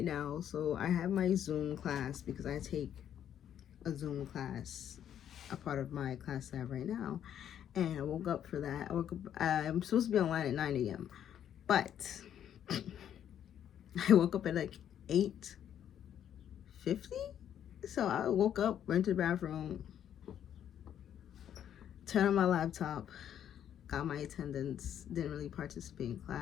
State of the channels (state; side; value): quieter; right; 9.9 dB